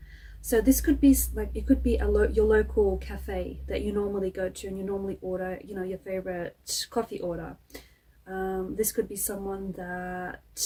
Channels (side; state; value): both; identical; correlation 1.00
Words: So this could be like, it could be your local cafe that you normally go to and you normally order, your favorite coffee order. This could be someone that